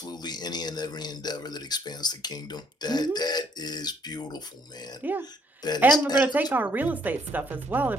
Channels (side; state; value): both; normal; correlation 0.67